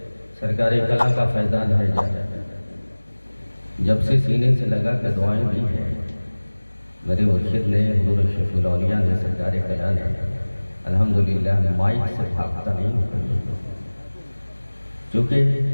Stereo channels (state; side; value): inverted; both; correlation -1.00